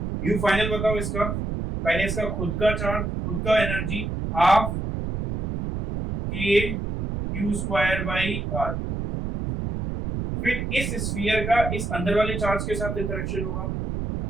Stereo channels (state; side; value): noise; right; rumble, 3 dB below the sound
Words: यू फाइनल बताओ इसका, पहले इसका खुद का चार्ज, खुद का एनर्जी हाफ के Q square by R two, फिर इस स्फीयर का इस अंदर वाले चार्ज के साथ इंटरेक्शन होगा,